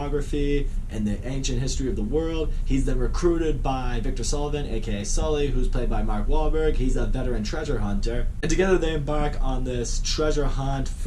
and the ancient history of the world. He's then recruited by Victor Sullivan, aka Sully, who's played by Mark Wahlberg. He's a veteran treasure hunter. And together they embark on this treasure hunt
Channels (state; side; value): identical; both; correlation 1.00